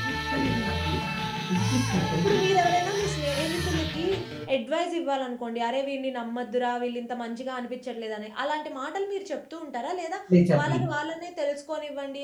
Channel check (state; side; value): identical; both; correlation 1.00